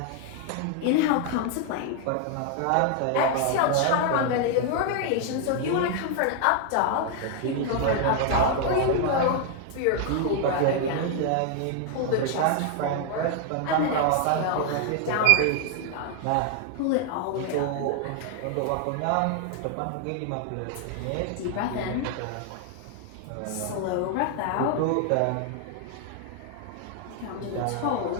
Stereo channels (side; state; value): both; different; correlation 0.00